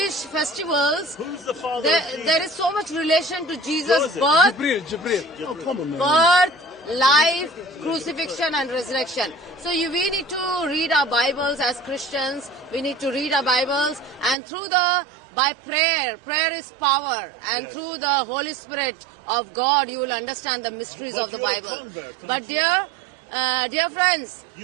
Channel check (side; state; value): left; drops out; at 14.4 s